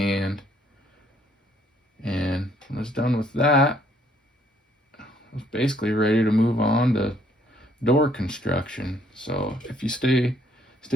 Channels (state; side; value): normal; both; correlation 0.65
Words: and when I was done with that, I was basically ready to move on to door construction. So if you stay